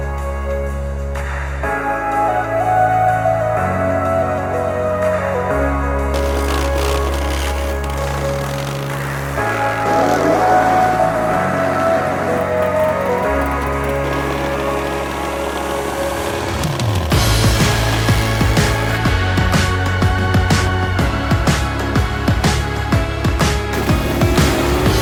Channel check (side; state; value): both; identical; correlation 1.00